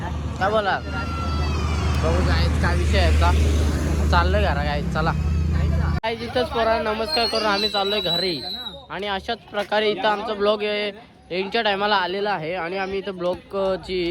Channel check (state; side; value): identical; both; correlation 1.00